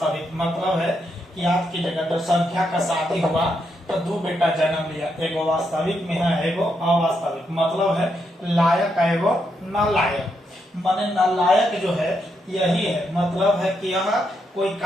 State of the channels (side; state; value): both; normal; correlation 0.80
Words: मतलब है कि याद कीजिएगा, तो संख्या का शादी हुआ तो दो बेटा जन्म लिया, एगो वास्तविक में है एगो अवास्तविक। मतलब है लायक एगो नालायक। माने नालायक जो है यही है, मतलब है कि यह कोई